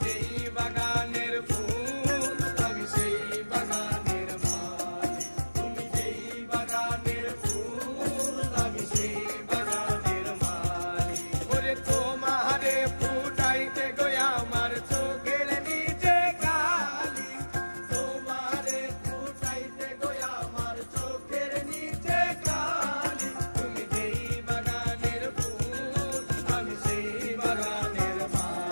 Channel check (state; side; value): inverted; both; correlation -1.00